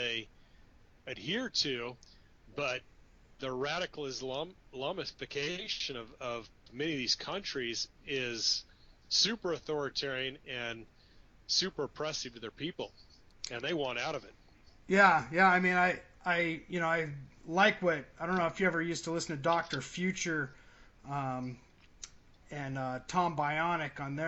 adhere to. But the radical Islamification of many of these countries is super authoritarian and super oppressive to their people, and they want out of it. Yeah. I mean, I like what, I don't know if you ever used to listen to Dr. Future and Tom Bionic on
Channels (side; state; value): both; identical; correlation 1.00